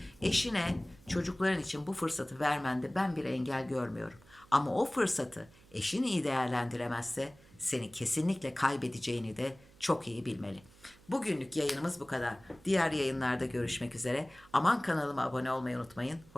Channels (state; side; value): noise; right; hum, 26 dB below the sound